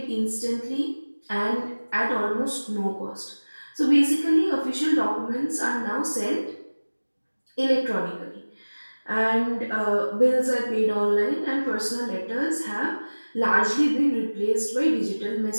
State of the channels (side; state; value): both; inverted; correlation -1.00